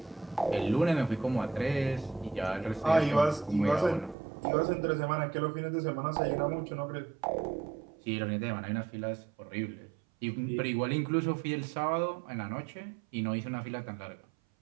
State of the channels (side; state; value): left; drops out; at 4.2 s